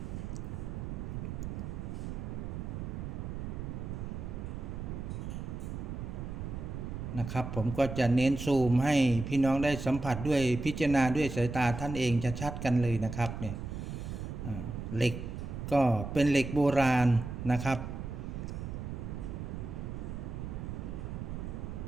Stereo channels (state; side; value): noise; right; rumble, 6 dB below the sound